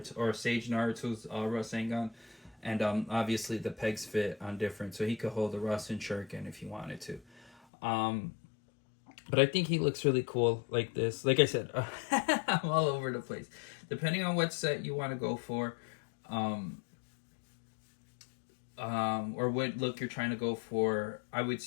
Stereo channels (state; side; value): drops out; right; at 7.5 s